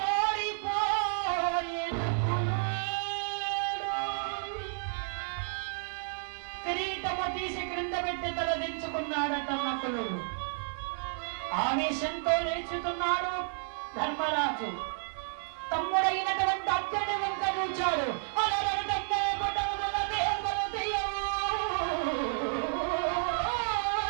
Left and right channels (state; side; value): silent; left; digital silence